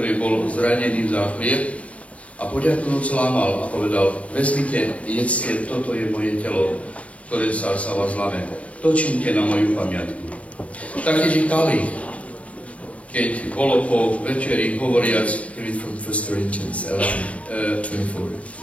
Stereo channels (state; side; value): late; right; 0.066 ms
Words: bol zranený za chlieb, a poďakujúc lámal a povedal, vezmite, jedzte, toto je moje telo, ktoré sa vás láme. To čínte na moju pamiatku. Taktiež i kalich, keď bolo po večeri hovoriac, Read from 1 Corinthians 11:24.